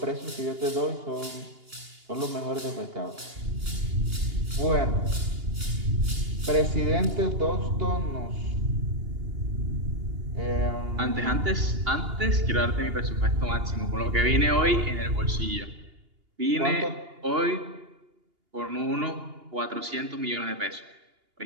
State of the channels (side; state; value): left; late; 2.8 ms